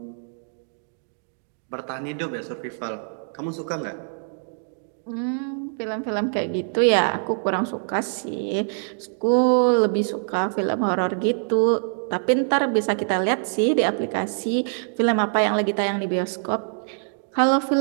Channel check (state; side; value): silent; left; digital silence